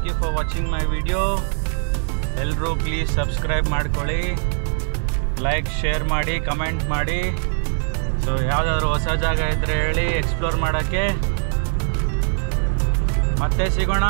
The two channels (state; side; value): silent; left; 65 dB below the other